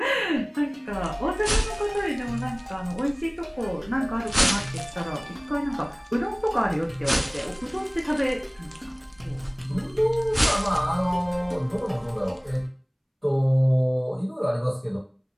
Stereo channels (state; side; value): identical; both; correlation 1.00